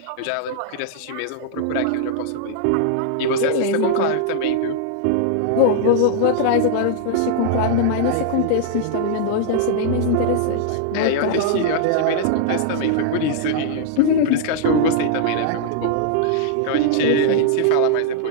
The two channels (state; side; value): different; both; correlation -0.01